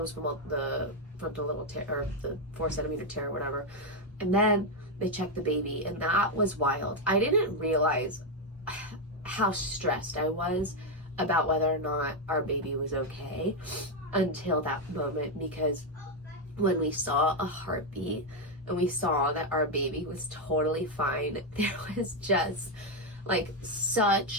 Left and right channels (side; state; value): both; normal; correlation 0.04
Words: from the little tear, or the 4-centimeter tear or whatever. And then they checked the baby, and that was wild. I didn't realize how stressed I was about whether or not our baby was okay until that moment, because when we saw a heartbeat and we saw that our baby was totally fine, there was just like